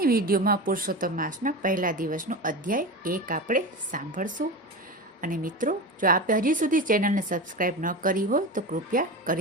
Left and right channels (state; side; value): normal; both; correlation 0.25